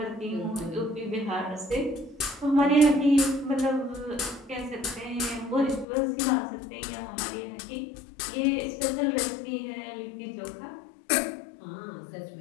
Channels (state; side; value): drops out; right; at 5.9 s